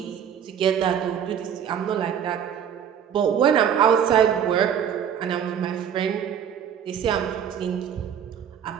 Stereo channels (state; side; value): quieter; left; 8.6 dB